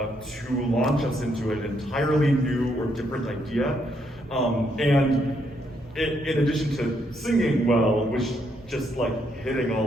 launch us into an entirely new or different idea. And in addition to singing well, was just like hitting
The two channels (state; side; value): normal; both; correlation 0.75